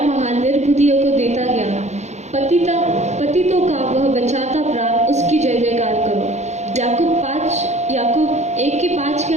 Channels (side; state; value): left; late; 0.33 ms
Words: निर्बुद्धियों को देता ज्ञान, पतितों का वह बचाता प्राण, उसकी जय जयकार करो। याकूब 1:5 के